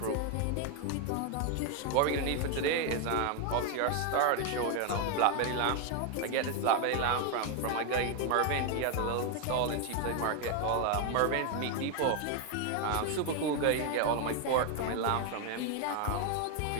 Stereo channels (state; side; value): different; both; correlation 0.01